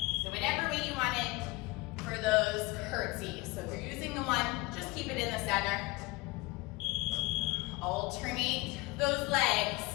So whatever way you want it for those curtsies. So if you're using the one, just keep it in the center. Alternate those legs.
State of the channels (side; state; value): right; quieter; 23.7 dB